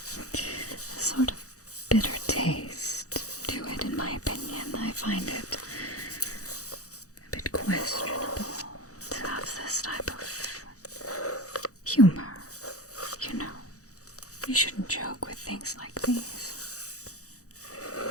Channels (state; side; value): late; right; 0.66 ms